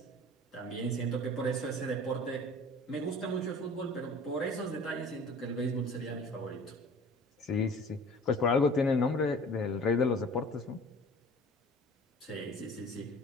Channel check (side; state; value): both; normal; correlation 0.45